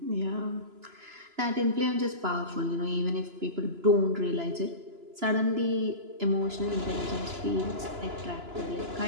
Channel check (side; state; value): left; late; 2.9 ms